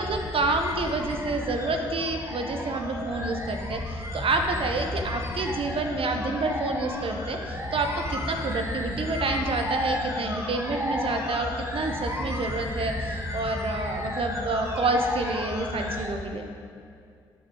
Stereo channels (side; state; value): both; normal; correlation 0.45